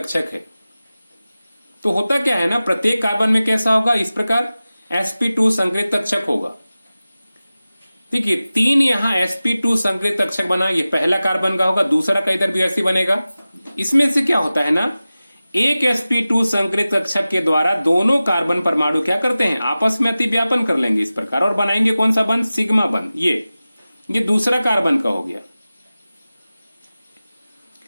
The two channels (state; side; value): inverted; both; correlation -0.96